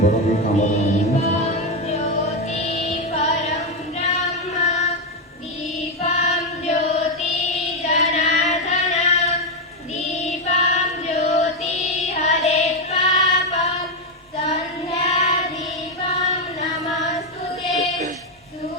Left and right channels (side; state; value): both; normal; correlation 0.06